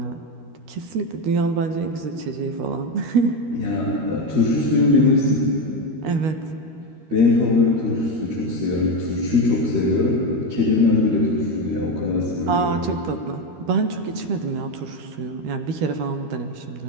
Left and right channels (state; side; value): late; left; 13 ms